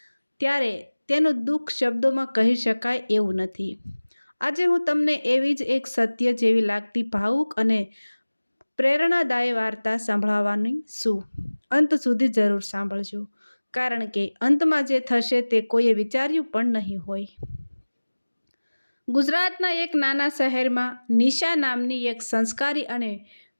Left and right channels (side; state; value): both; inverted; correlation -1.00